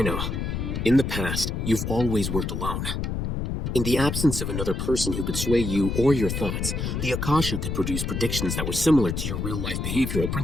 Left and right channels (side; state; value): left; noise; rumble, 2 dB below the sound